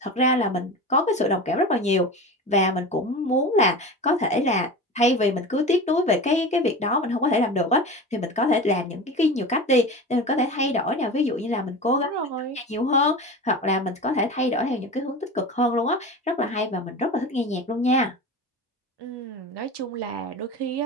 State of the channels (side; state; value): both; normal; correlation 0.30